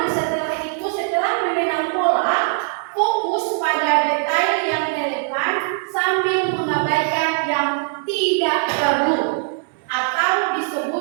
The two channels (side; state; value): left; silent; 65 dB below the other